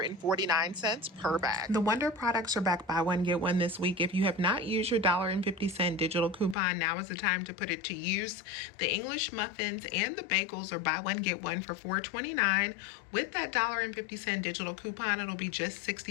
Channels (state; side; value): drops out; right; at 6.6 s